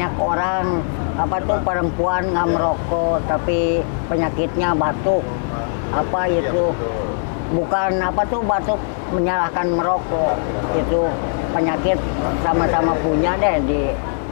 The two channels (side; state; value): right; silent; 59 dB below the other